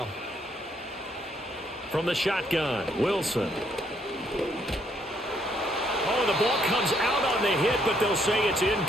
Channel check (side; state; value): both; normal; correlation 0.70